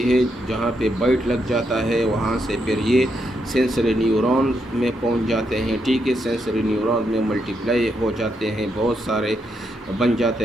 ہے، جہاں پہ بائٹ لگ جاتا ہے وہاں سے پھر یہ سینسری نیورون میں پہنچ جاتے ہیں، ٹھیک ہے، سینسری نیورون میں ملٹیپلائی ہو جاتے ہیں، بہت سارے بن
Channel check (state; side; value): normal; both; correlation 0.80